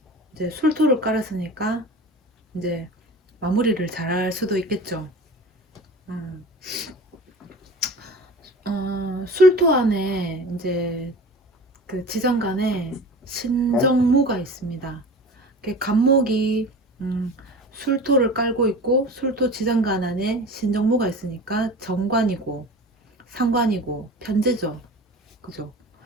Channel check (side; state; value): both; normal; correlation 0.36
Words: 이제 술토를 깔았으니까 이제 마무리를 잘할 수도 있겠죠. 술토 안에 이제 그 지정간에 신정무가 있습니다. 갑목이 술토를 깔고 있고 술토 지정간 안에 신정무가 있으니까 정관이고 상관이고 편제죠. 그죠?